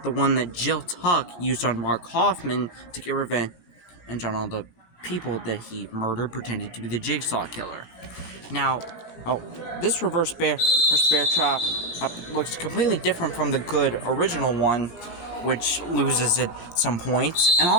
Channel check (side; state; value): right; late; 17 ms